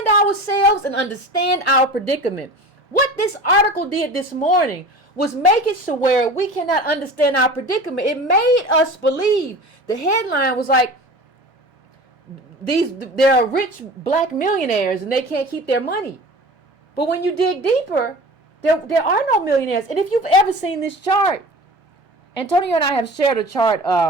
ourselves and understand our predicament. What this article did this morning was make it so where we cannot understand our predicament. It made us believe. The headline was like, there are rich black millionaires and they can't keep their money. But when you dig deeper, there are no millionaires. And if you've ever seen this chart, Antonio and I have shared a chart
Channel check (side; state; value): both; normal; correlation 0.37